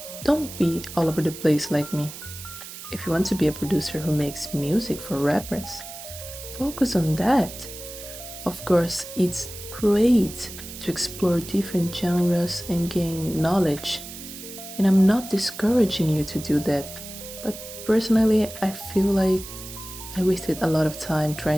don't be all over the place like me. If you want to be a producer who makes music for rappers, focus on that. Of course, it's great to explore different genres and gain knowledge, and I'm not discouraging you to do that. But personally, I feel like I wasted a lot of time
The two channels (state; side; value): noise; right; hiss, 12 dB below the sound